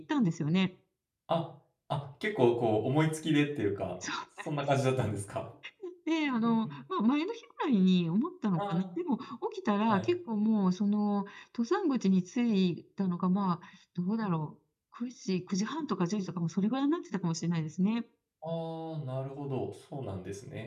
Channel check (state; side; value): identical; both; correlation 1.00